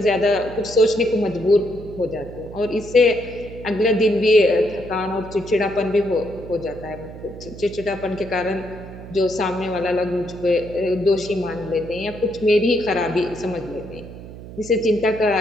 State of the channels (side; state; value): right; noise; hum, 14 dB below the sound